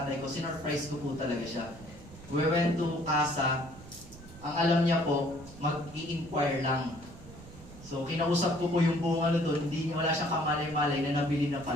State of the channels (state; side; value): noise; right; rumble, 18 dB below the sound